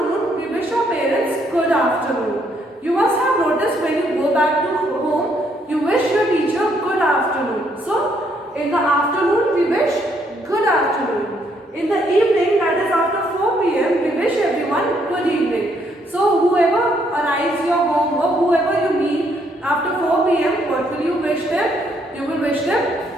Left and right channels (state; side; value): normal; both; correlation 0.71